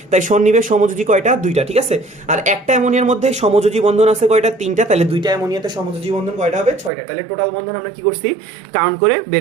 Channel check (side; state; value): left; drops out; at 6.9 s